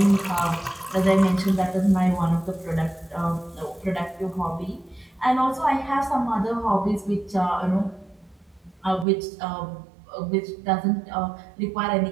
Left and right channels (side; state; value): left; drops out; at 9.1 s